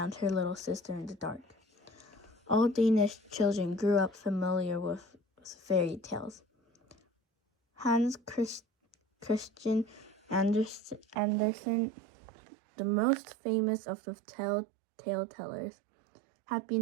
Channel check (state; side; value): drops out; left; at 11.2 s